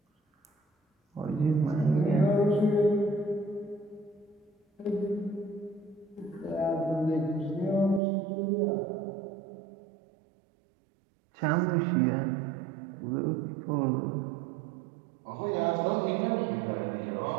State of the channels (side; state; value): left; drops out; at 8.0 s